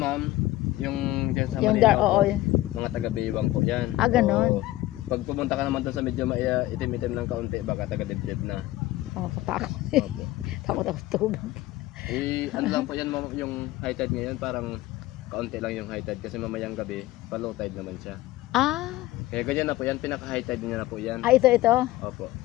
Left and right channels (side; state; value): right; quieter; 16.6 dB